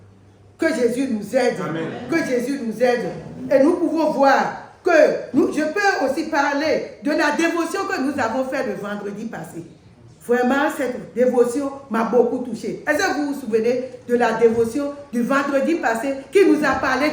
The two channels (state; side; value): identical; both; correlation 1.00